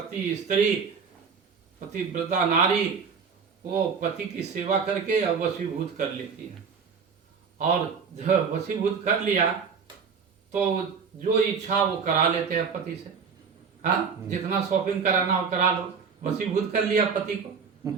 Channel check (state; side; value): quieter; left; 6.0 dB